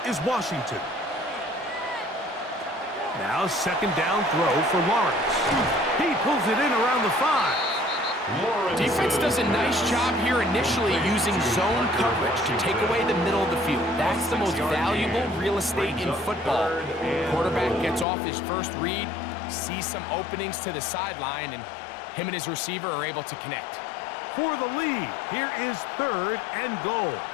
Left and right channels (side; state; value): right; drops out; at 18.1 s